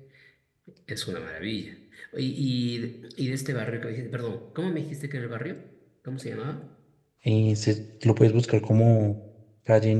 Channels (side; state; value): both; identical; correlation 1.00